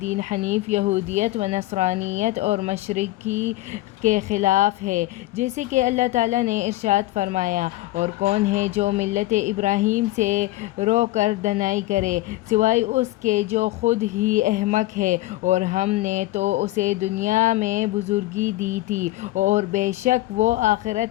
حنیف یہودیت و نصرانیت اور مشرکی کے خلاف ہے، جیسے کہ اللہ تعالیٰ نے ارشاد فرمایا، اور کون ہے جو ملت ابراہیم سے رو کر دنائی کرے سوائے اس کے جو خود ہی احمق ہے، اور ہم نے تو اسے دنیا میں بزرگی دی تھی، اور بے شک وہ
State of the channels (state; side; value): quieter; right; 17.5 dB